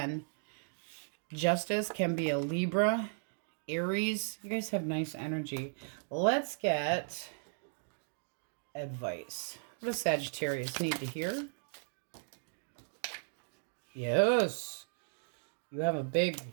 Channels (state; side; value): silent; left; digital silence